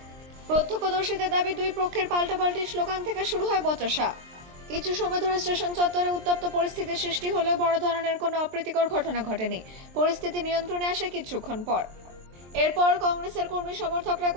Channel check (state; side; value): late; left; 23 ms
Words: প্রত্যক্ষদর্শীদের দাবি, দুই পক্ষের পাল্টাপাল্টি স্লোগান থেকে শুরু হয় বচসা। কিছু সময় ধরে স্টেশন চত্বরে উত্তপ্ত পরিস্থিতির সৃষ্টি হলেও বড় ধরনের কোনো অপ্রীতিকর ঘটনা ঘটেনি। পরিস্থিতি নিয়ন্ত্রণে আসে কিছুক্ষণ পর। এরপর কংগ্রেসের কর্মী সমর্থকরা